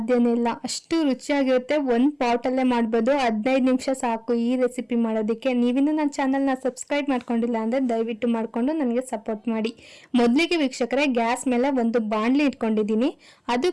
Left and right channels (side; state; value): both; identical; correlation 1.00